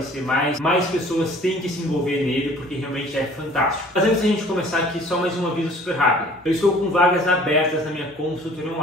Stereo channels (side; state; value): both; normal; correlation 0.51